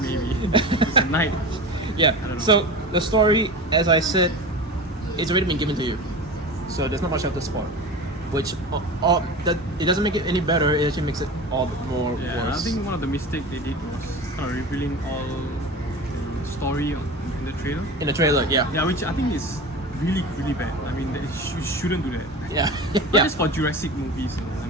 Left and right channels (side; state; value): both; normal; correlation 0.31